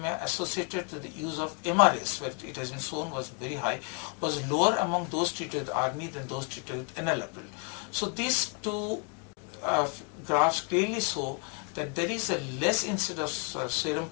associated with the use of MRAs, where it has been shown was very high, was lower among those treated with ARNI than those treated with enalapril. So these two graphs clearly show that there is a less incidence of serum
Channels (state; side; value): quieter; right; 35.8 dB